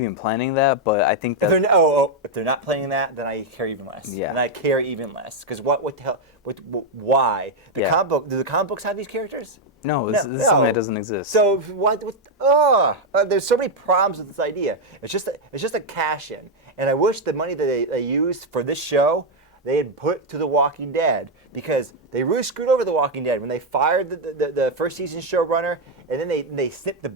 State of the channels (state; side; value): normal; both; correlation 0.02